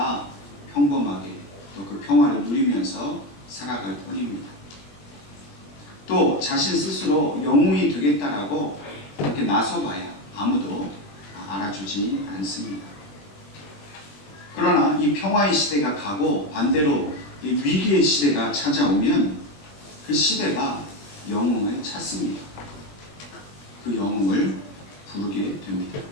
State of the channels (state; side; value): late; right; 20 ms